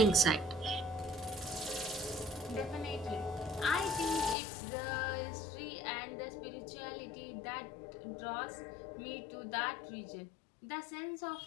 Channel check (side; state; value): right; drops out; at 4.4 s